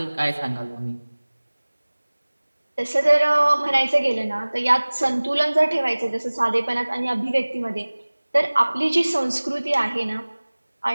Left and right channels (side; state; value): both; inverted; correlation -1.00